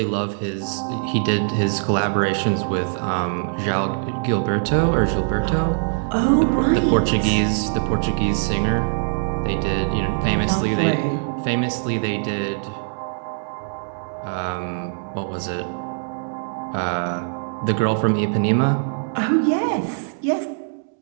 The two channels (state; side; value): silent; left; 64 dB below the other